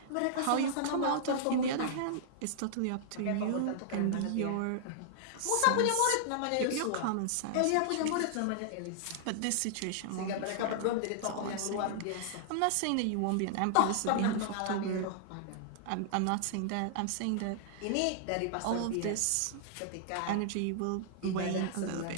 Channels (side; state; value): both; different; correlation -0.01